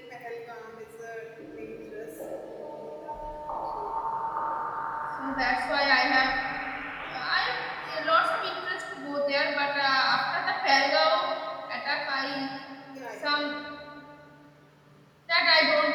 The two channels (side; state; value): both; identical; correlation 1.00